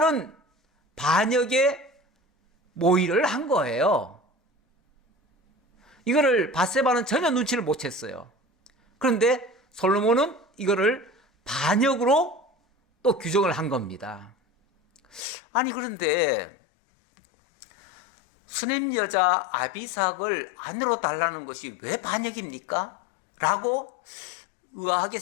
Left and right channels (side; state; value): right; drops out; at 15.2 s